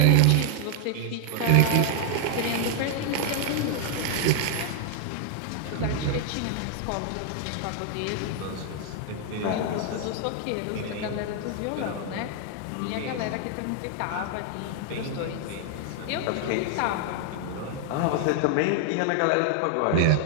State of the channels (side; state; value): both; different; correlation 0.00